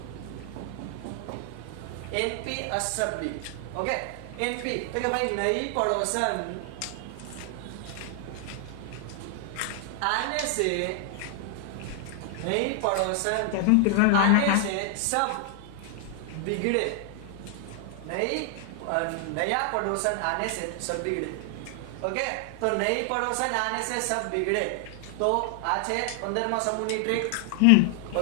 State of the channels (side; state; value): both; different; correlation 0.00